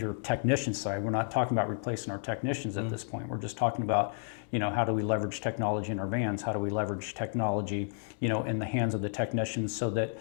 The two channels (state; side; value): silent; right; digital silence